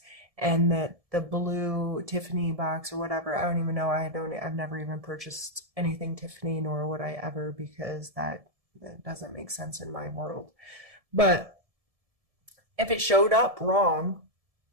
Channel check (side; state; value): left; late; 1.7 ms